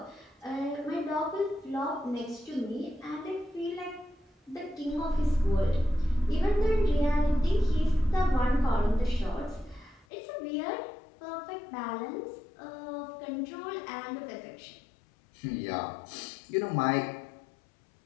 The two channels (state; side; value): drops out; right; at 10.1 s